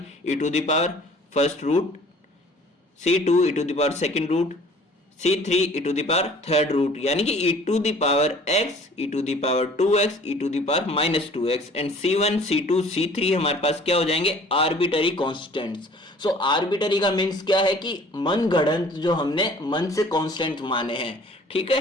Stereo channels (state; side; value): normal; both; correlation 0.51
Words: e to the power first root, c2 e to the power second root, c3 e to the power third root, यानी कि e to the power x, e to the power 2x, e to the power -2x and c1, c2, c3 हमारे पास क्या हो जाएंगे arbitrary constants. So arbitrary का means क्या है कि मनगढ़ंत जो हमने मन से कांस्टेंट माने हैं, ठीक